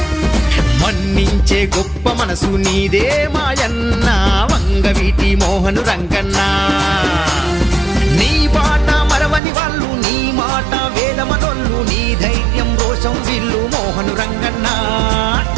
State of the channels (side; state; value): left; drops out; at 9.4 s